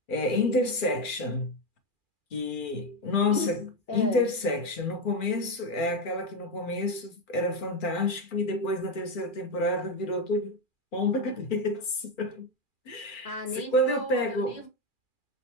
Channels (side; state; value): right; late; 2.4 ms